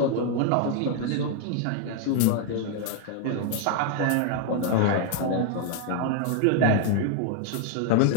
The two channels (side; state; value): both; different; correlation 0.00